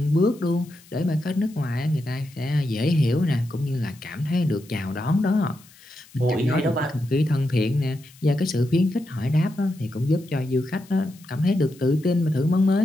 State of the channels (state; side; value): noise; left; hiss, 25 dB below the sound